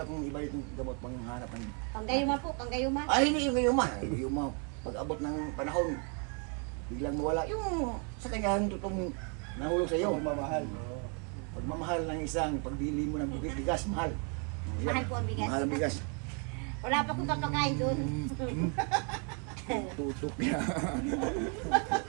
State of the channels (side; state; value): left; quieter; 38.1 dB